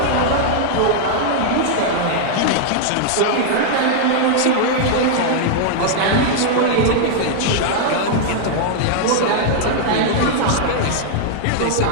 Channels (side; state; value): both; different; correlation -0.01